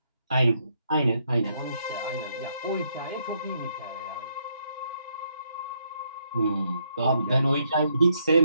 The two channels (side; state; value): both; inverted; correlation -0.74